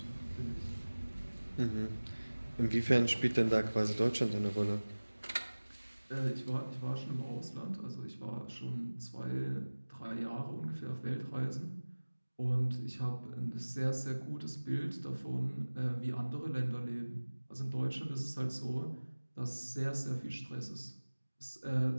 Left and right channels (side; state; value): both; inverted; correlation -1.00